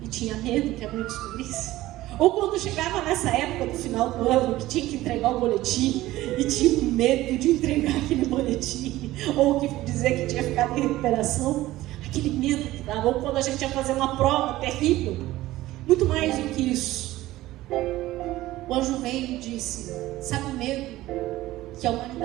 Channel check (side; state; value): left; quieter; 16.5 dB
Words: e tinha medo que a mãe descobrisse? Ou quando chegava nessa época do final do ano, que tinha que entregar o boletim e tinha medo de entregar aquele boletim, ou que dizer que tinha ficado em recuperação, aquele medo que dava. Ou quando a gente ia fazer uma prova terrível. Muito mais do que isso, o anjo veio e disse: sabe o medo que a